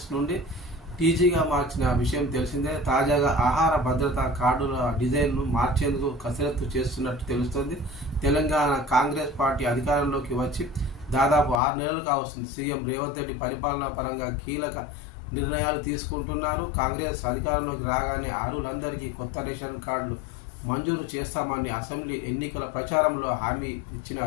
నుండి టీజీగా మార్చిన విషయం తెలిసిందే. తాజాగా ఆహార భద్రతా కార్డుల డిజైన్ను మార్చేందుకు కసరత్తు చేస్తున్నట్టు తెలుస్తోంది. తెలంగాణ కాంగ్రెస్ పార్టీ అధికారంలోకి వచ్చి దాదాపు 6 నెలలుగా వస్తుంది. సీఎం రేవంత్ రెడ్డి పరిపాలనా పరంగా కీలక నిర్ణయాలు తీసుకుంటున్నారు. కాంగ్రెస్ అధికారంలోకి రాగానే అర్హులందరికీ కొత్త రేషన్ కార్డులు మంజూరు చేస్తామని అసెంబ్లీ ఎన్నికల ప్రచారంలో హామీ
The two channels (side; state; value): right; drops out; at 11.6 s